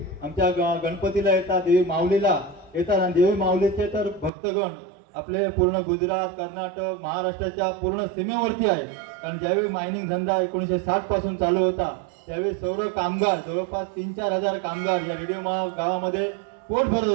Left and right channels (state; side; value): drops out; left; at 4.3 s